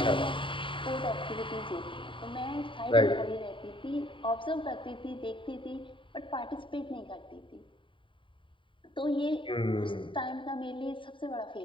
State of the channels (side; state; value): right; late; 0.25 ms